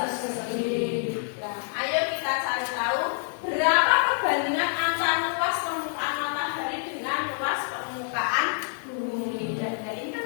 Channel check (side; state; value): right; silent; 60 dB below the other